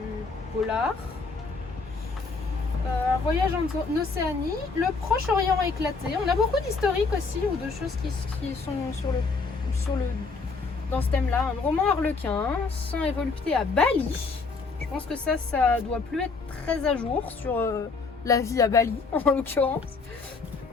polar. Un voyage en Océanie, le Proche-Orient éclaté. On a beaucoup d'historiques aussi ou de choses qui sont dans ce thème-là. Un roman harlequin, sang et volupté à Bali. Je pense que ça doit plus être très à jour sur la vie à Bali en l'occurrence.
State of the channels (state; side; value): quieter; right; 4.3 dB